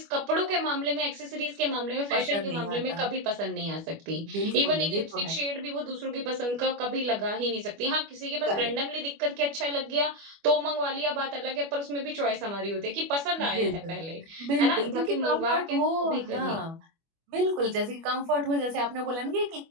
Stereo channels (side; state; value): left; late; 25 ms